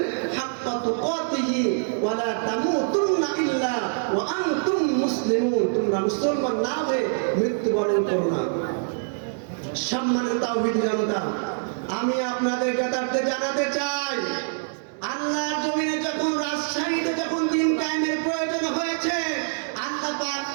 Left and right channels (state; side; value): silent; left; 62 dB below the other